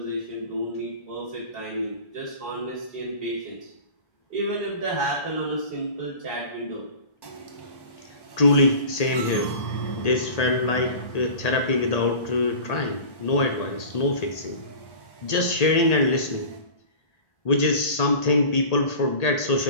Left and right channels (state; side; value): late; right; 1.8 ms